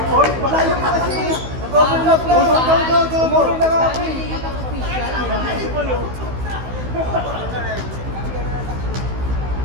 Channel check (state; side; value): late; left; 16 ms